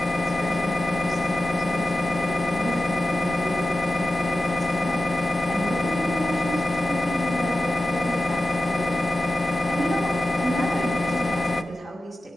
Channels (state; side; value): normal; both; correlation 0.93